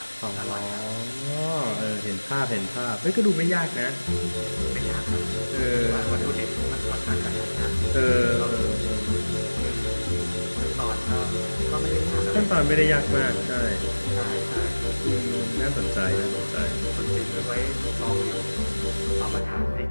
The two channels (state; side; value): inverted; both; correlation -1.00